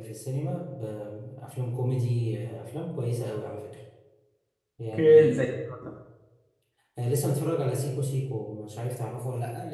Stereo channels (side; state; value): both; identical; correlation 1.00